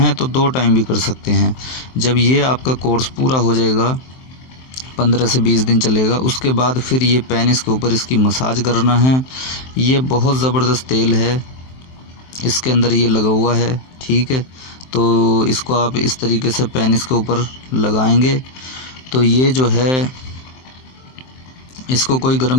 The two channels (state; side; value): late; right; 23 ms